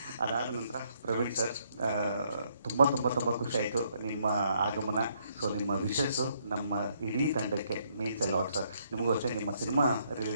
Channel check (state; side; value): inverted; both; correlation -0.71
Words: ಅದಾದ ನಂತರ ಪ್ರವೀಣ್ ಸರ್, ತುಂಬ ತುಂಬ ತುಂಬ ಖುಷಿ ಆಯಿತು ನಿಮ್ಮ ಆಗಮನ. ಸೊ ನಿಮ್ಮ ವಿಶಸ್ಸು ನಮ್ಮ ಇಡೀ ತಂಡಕ್ಕೆ ಮೀನ್ಸ್ ಎಲ್ಲ ಲಾಟ್ ಸರ್. ನಿಮಗೂ ಅಷ್ಟೇ, ನಿಮ್ಮ ಸಿನಿಮಾ